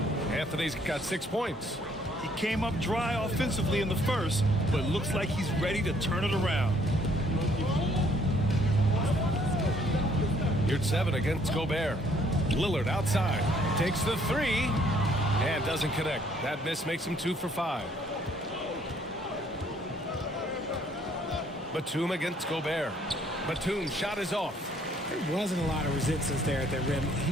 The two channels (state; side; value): normal; both; correlation 0.64